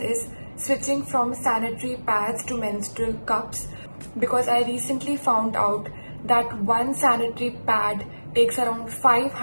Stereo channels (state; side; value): inverted; both; correlation -1.00